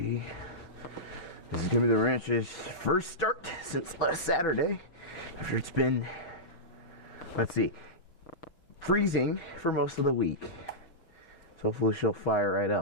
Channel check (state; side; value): late; right; 5.7 ms